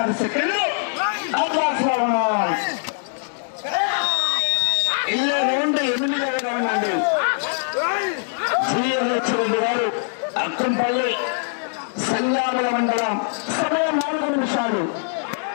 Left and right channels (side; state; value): right; silent; digital silence